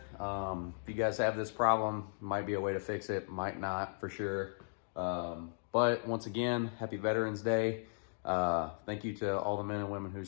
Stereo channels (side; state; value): right; silent; digital silence